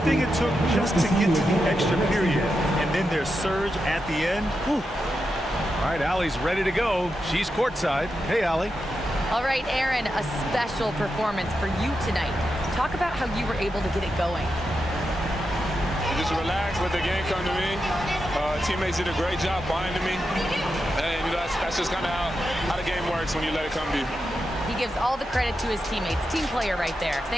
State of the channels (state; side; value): normal; both; correlation 0.87